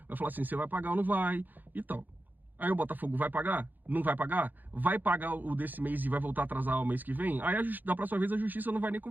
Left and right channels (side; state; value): left; late; 0.086 ms